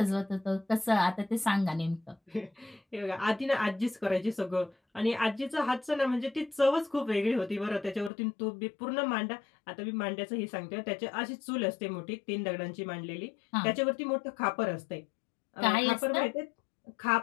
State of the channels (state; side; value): drops out; right; at 8.1 s